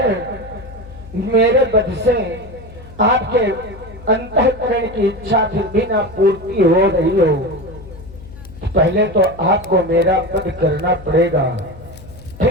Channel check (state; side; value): noise; left; hum, 17 dB below the sound